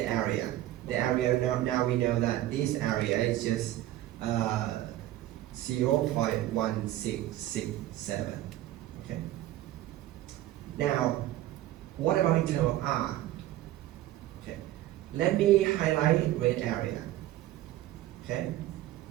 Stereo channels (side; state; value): left; quieter; 14.4 dB